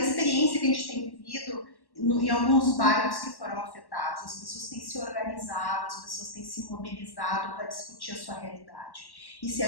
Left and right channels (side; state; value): right; late; 1.1 ms